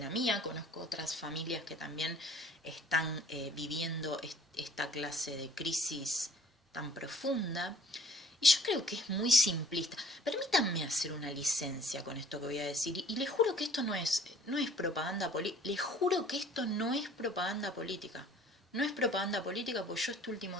mía, conozco otras familias que también están viviendo esta clase de crisis tan profunda. Y yo creo que es muy simplista. Permítanme hacer una licencia con esto que voy a decir. Y les juro que esto no es propaganda política. Les juro que esto no es propaganda política. No es propaganda política porque yo este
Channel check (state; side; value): normal; both; correlation 0.54